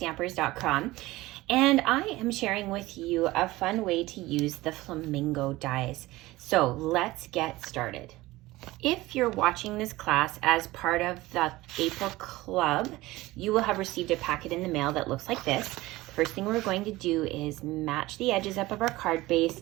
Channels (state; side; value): quieter; left; 18.8 dB